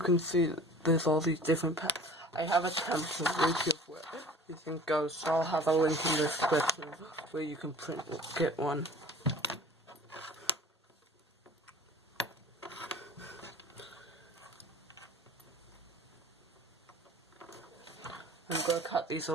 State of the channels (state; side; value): normal; both; correlation 0.44